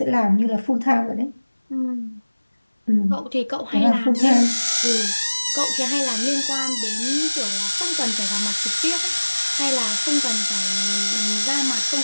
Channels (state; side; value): inverted; both; correlation -1.00